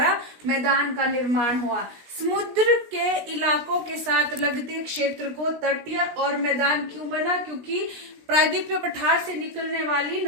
मैदान का निर्माण हुआ। समुद्र के इलाकों के साथ लगते क्षेत्र को तटीय और मैदान क्यों बना? क्योंकि प्रायद्वीपीय पठार से निकलने वाली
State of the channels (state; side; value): late; left; 16 ms